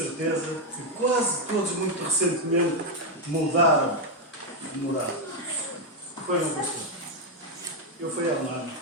que quase todos muito recentemente mudaram de morada. Foi um pastor. Eu fui há um ano.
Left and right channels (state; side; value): normal; both; correlation 0.03